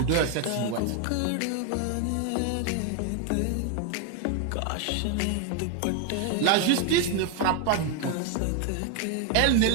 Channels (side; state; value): both; different; correlation 0.01